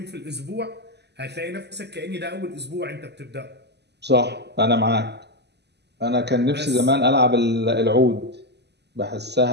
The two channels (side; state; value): left; late; 0.49 ms